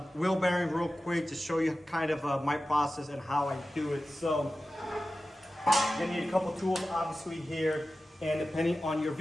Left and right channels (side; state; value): both; normal; correlation 0.95